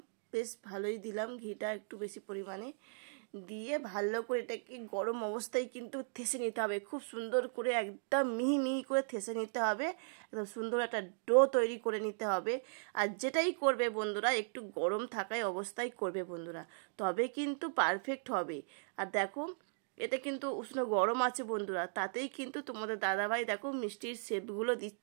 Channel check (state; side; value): silent; left; digital silence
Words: বেশ ভালোই দিলাম ঘিটা একটু বেশি পরিমাণে দিয়ে ভালো করে এটাকে গরম অবস্থায় কিন্তু থেসে নিতে হবে, খুব সুন্দর করে একদম মিহি মিহি করে থেসে নিতে হবে, একদম সুন্দর একটা ডো তৈরি করে নিতে হবে। আর যেটাই করবে বন্ধুরা একটু গরম থাকায় অবস্থায় করবে বন্ধুরা, তবে কিন্তু পারফেক্ট হবে। আর দেখো এটা কিন্তু উষ্ণ গরম আছে বন্ধুরা, তাতেই কিন্তু তোমাদের দাদাভাই দেখো মিষ্টির শেপগুলো